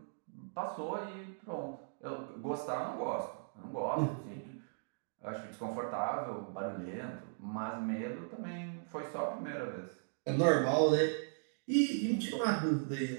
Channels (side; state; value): left; silent; digital silence